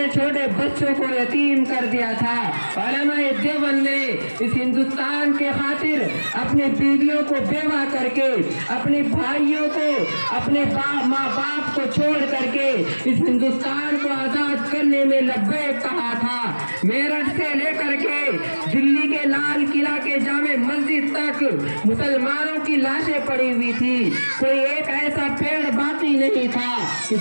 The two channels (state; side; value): inverted; both; correlation -1.00